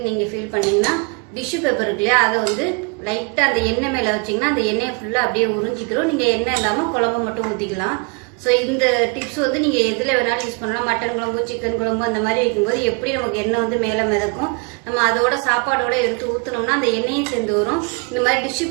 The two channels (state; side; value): quieter; left; 32.5 dB